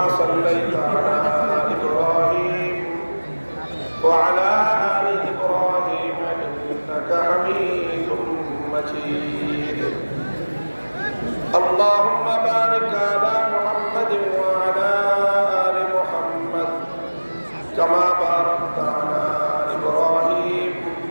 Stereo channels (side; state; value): both; inverted; correlation -1.00